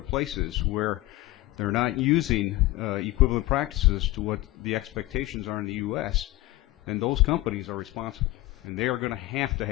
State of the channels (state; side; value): quieter; right; 18.7 dB